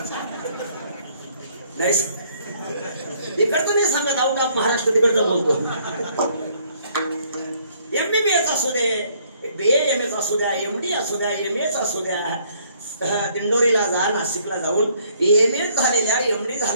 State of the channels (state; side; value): inverted; both; correlation -0.64